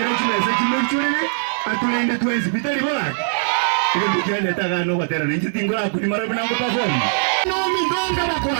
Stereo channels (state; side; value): silent; left; digital silence